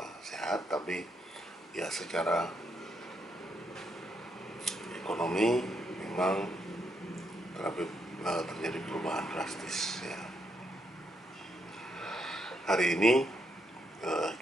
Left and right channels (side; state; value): both; normal; correlation 0.78